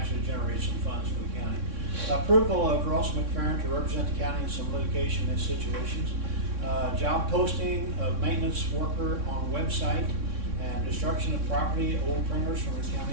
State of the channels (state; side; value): late; left; 3.6 ms